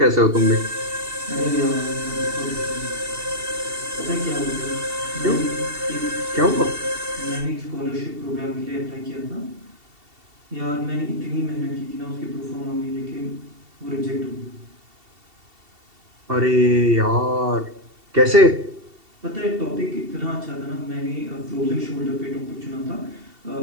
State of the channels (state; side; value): late; left; 2.7 ms